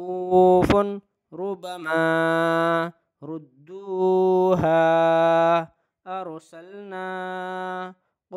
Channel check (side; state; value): both; identical; correlation 1.00